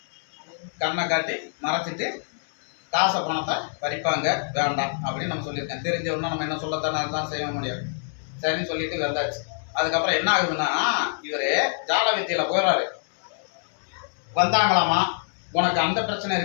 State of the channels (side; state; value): right; silent; digital silence